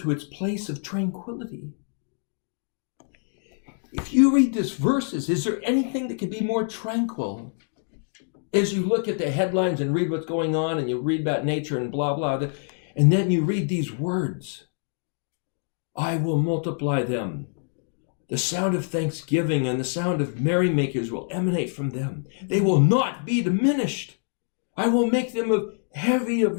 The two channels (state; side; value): silent; right; 59 dB below the other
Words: its place of tranquility. If you read these verses, is there anything that could be more tranquil? As you look at the headlines and read what's going on, and you read about nature and blah, blah, and then you read these words. I will multiply them. The sound of thanksgiving and the sound of merrymakers will emanate from them. They will not be diminished. I will make them of heavy